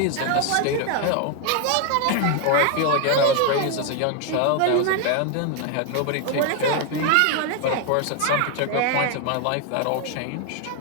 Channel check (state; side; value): different; both; correlation 0.01